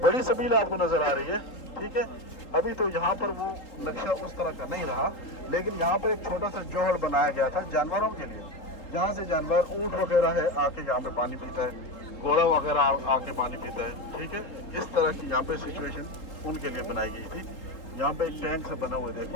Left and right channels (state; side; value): late; right; 3.8 ms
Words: बड़ी सबील आपको नजर आ रही है, ठीक है। अभी तो यहाँ पर वो नक्शा उस तरह का नहीं रहा, लेकिन यहाँ पर एक छोटा सा जोहड़ बनाया गया था जानवरों के लिए, जहाँ से जानवर ऊँट वगैरह है आके यहाँ पे पानी पीता है, घोड़ा वगैरह आके पानी पीता है, ठीक है। इस तरह की यहाँ पे सिचुएशन उनके लिए बनाई गई थी। यहाँ पे एक टैंक से बना हुआ है,